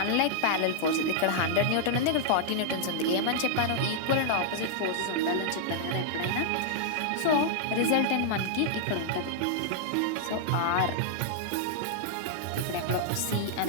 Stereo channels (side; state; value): both; different; correlation -0.01